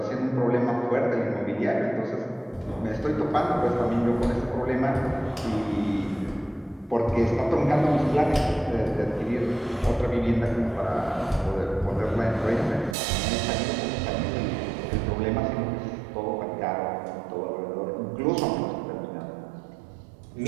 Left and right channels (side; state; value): left; drops out; at 13.0 s